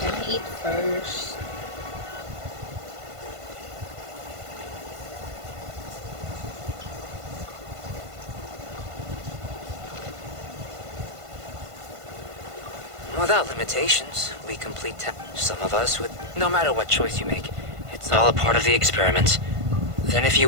I eat first? Without limitations, we complete some of us with no matter what choice you make. It's all a part of the experiment. Then if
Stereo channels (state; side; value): late; left; 1.5 ms